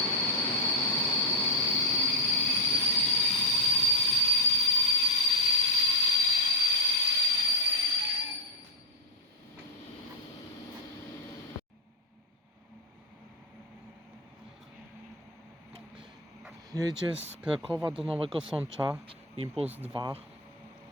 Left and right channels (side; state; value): both; normal; correlation 0.04